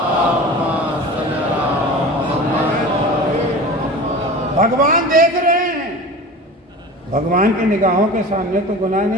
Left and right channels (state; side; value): normal; both; correlation 0.35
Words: بھگوان دیکھ رہے ہیں. بھگوان کی نگاہوں کے سامنے تو گناہ